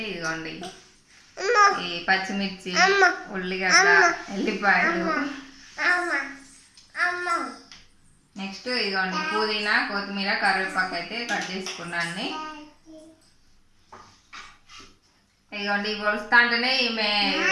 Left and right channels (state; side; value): identical; both; correlation 1.00